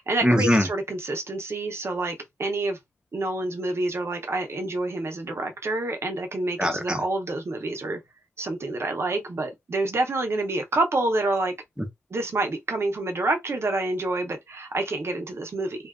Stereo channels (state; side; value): normal; both; correlation 0.76